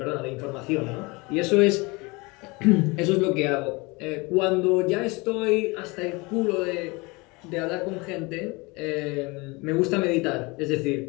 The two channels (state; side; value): quieter; right; 25.7 dB